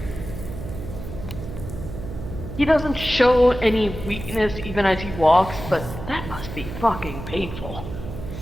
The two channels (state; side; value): noise; right; hum, 9 dB below the sound